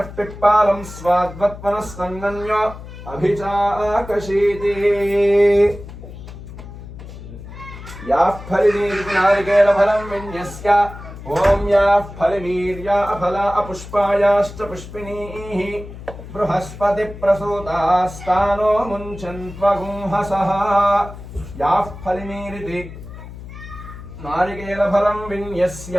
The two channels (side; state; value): left; noise; hum, 14 dB below the sound